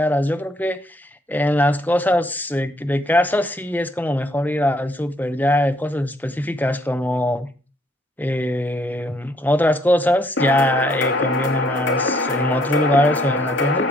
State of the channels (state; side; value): normal; both; correlation 0.67